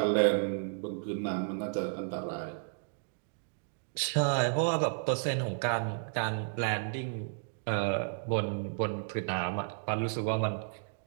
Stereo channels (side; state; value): left; silent; digital silence